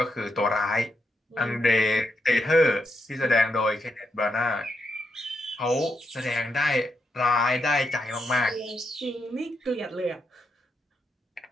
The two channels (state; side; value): normal; both; correlation 0.82